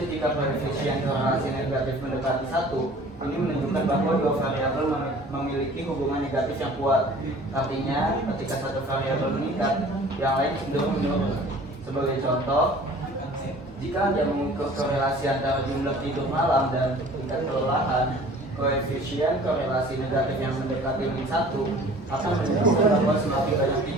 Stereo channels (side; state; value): both; normal; correlation 0.48